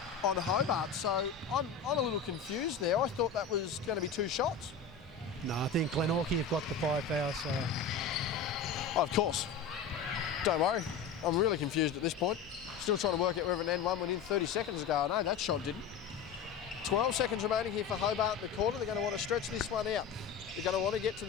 on Hobart, so I'm a little confused there. I thought that was going to be 2 shots. No, I think Glenorchy have got the 5 fouls, so... Oh, of course. Don't worry. I'm really confused at this point. Still trying to work out whether an N1 went in 30 seconds ago. I know that shot didn't. 12 seconds remaining here for Hobart in the corner. They're going to want to stretch this one out. They're going to want to get to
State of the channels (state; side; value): quieter; right; 6.2 dB